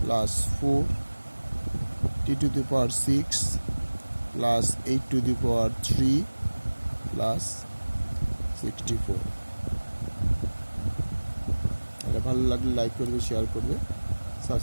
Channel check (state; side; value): inverted; both; correlation -1.00